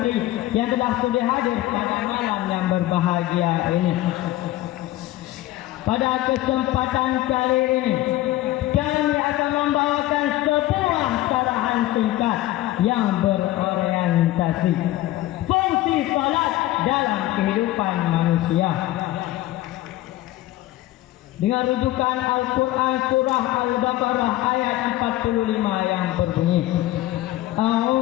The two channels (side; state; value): right; quieter; 15.8 dB